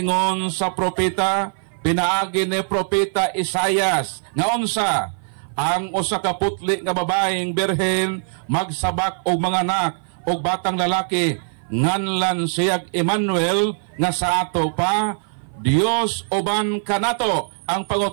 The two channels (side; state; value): left; silent; 56 dB below the other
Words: sa propeta pinaagi ni propeta Isaias nga unsa ang usa ka putli nga babaeng berhen magsabak og mga anak og batang lalaki nganlan siyag Emmanuel nga sa ato pa Dios uban kanato. Ang